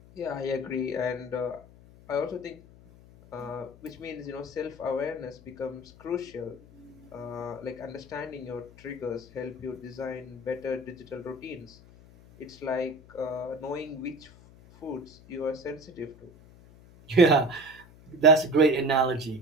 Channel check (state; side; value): noise; left; hum, 22 dB below the sound